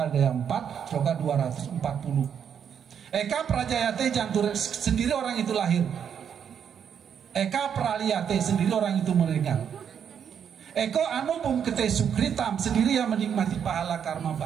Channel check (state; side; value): quieter; left; 8.0 dB